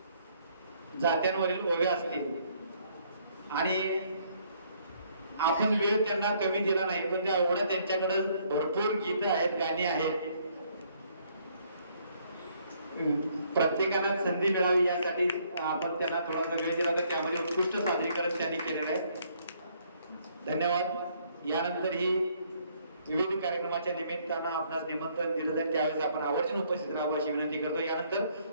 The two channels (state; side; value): inverted; both; correlation -0.66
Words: जात्यांवरील ओव्या असतील आणि आपण वेळ त्यांना कमी दिला नाही पण त्या एवढ्या त्यांच्याकडे भरपूर गीत आहेत, गाणी आहेत. प्रत्येकाला संधी मिळावी यासाठी आपण त्यांना थोडासा वेळ दिला तर त्यामध्ये उत्कृष्ट सादरीकरण त्यांनी केलेलं आहे. धन्यवाद. यानंतर ही विविध कार्यक्रमाच्या निमित्तानं आपणास निमंत्रण दिलं जाईल त्यावेळेस आपण आवर्जून उपस्थित राहावं अशी विनंती करतो. यानंतर